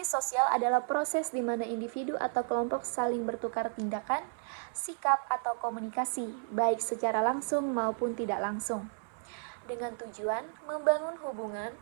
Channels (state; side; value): silent; left; 56 dB below the other